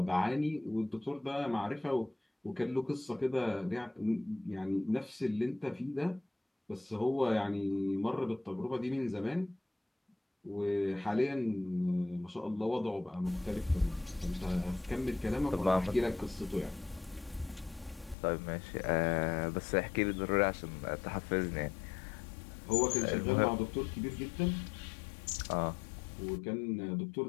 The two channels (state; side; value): drops out; right; at 18.2 s